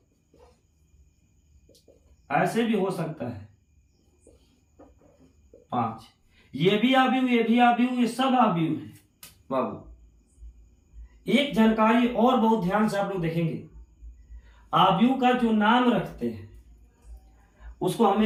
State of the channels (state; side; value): identical; both; correlation 1.00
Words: ऐसे भी हो सकता है 5। ये भी आव्यूह, ये भी आव्यूह, ये सब आव्यूह है बाबू। एक जानकारी और बहुत ध्यान से आप लोग देखेंगे, आव्यूह का जो नाम रखते हैं उसको